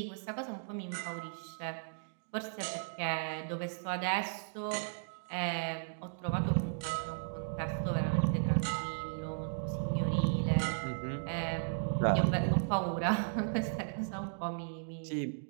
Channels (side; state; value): left; silent; digital silence